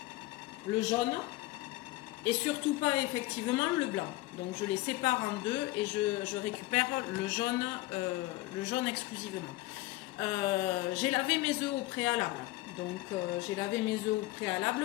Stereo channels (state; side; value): quieter; right; 18.9 dB